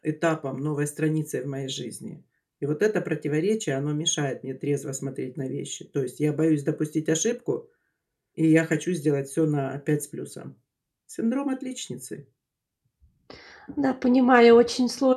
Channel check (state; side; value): identical; both; correlation 1.00